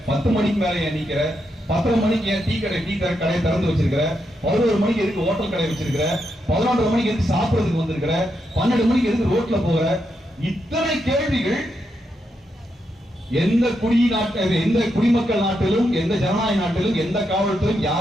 10 மணிக்கு மேல ஏன் நிக்கிற, 10 மணிக்கு ஏன் டீ கடையை திறந்து வச்சிருக்கிற, 11 மணிக்கு எதுக்கு ஹோட்டல் கடை வச்சிருக்கிற, 11 மணிக்கு எதுக்கு சாப்பிடுறதுக்கு வந்திருக்கிற, 12 மணிக்கு எதுக்கு ரோட்ல போற, இத்தனை கேள்விகள் எந்த குடிமக்கள் நாட்டிலும், எந்த ஜனநாயக நாட்டிலும், எந்த காவல்துறையும்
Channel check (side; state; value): both; normal; correlation 0.82